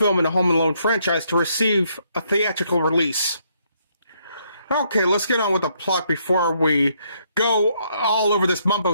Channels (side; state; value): both; inverted; correlation -0.72